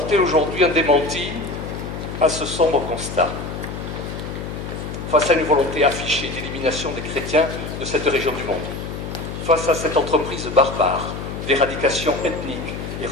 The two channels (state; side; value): noise; left; hum, 7 dB below the sound